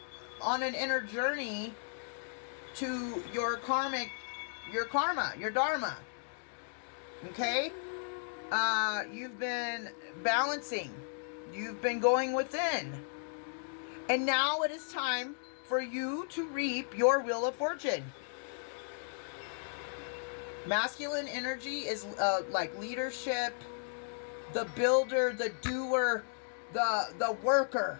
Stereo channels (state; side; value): silent; right; digital silence